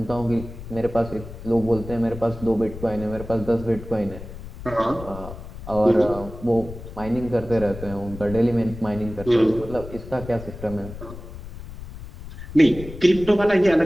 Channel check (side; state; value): left; noise; rumble, 13 dB below the sound